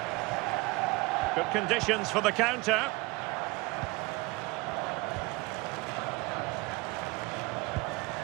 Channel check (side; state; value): left; quieter; 24.2 dB